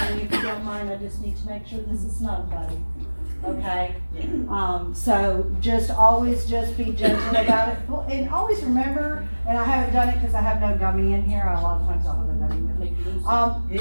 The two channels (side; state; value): both; inverted; correlation -1.00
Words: if you don't mind, I just need to make sure this is snug, buddy. okay? Yeah. So always just be gentle about it, and always remember, and I haven't done it because I have no gummy in here, a lot of times I'll have a gummy with me.